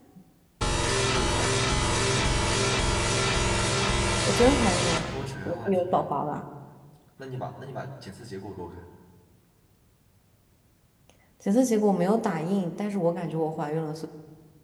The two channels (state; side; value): identical; both; correlation 1.00